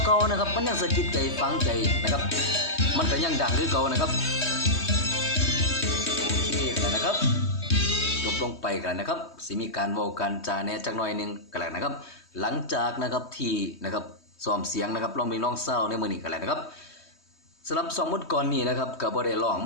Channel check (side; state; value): right; late; 3.2 ms